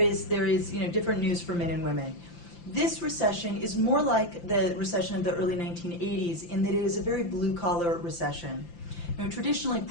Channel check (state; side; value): late; right; 5.8 ms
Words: different news for men and women. This recession is more like the recession of the early 1980s in that it is a very blue-collar recession. Now, traditionally,